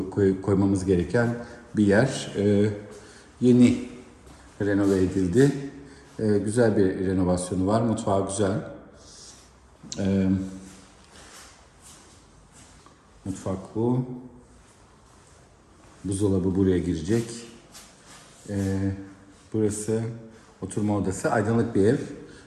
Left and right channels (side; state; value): both; identical; correlation 1.00